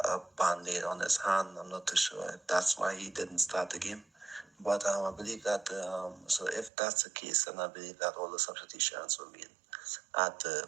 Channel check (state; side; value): drops out; left; at 6.7 s